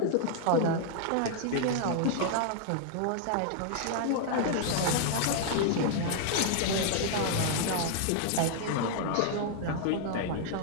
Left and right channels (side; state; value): both; different; correlation -0.01